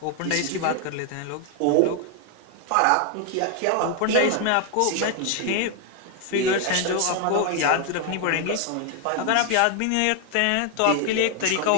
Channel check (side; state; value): both; different; correlation 0.00